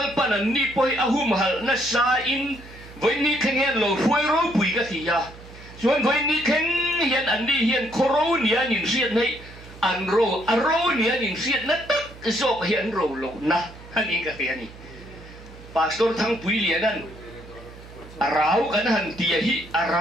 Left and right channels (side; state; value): right; noise; hum, 18 dB below the sound